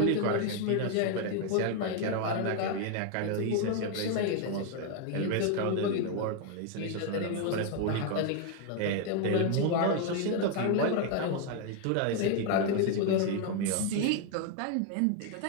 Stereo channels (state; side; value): different; both; correlation 0.01